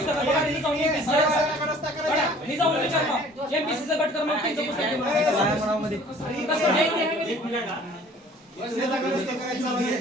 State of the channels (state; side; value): normal; both; correlation 0.52